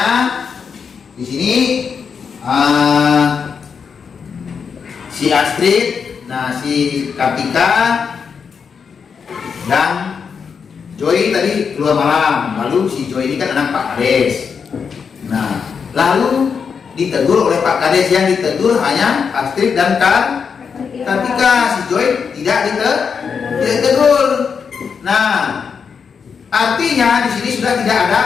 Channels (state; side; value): quieter; right; 6.2 dB